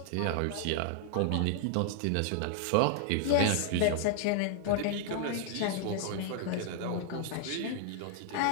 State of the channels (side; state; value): both; different; correlation 0.00